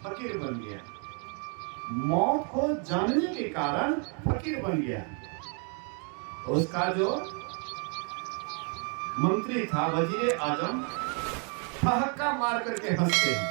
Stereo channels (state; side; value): quieter; left; 38.9 dB